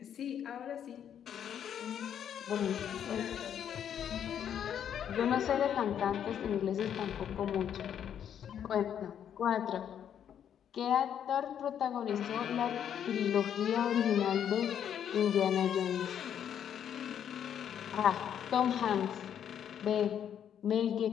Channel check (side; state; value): right; quieter; 9.2 dB